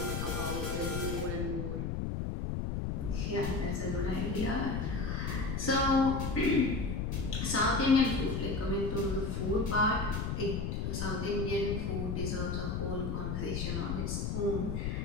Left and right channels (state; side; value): noise; left; rumble, 1 dB below the sound